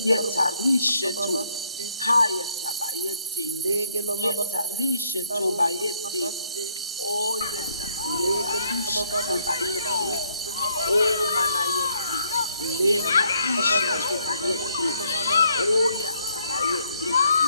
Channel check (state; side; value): inverted; both; correlation -0.66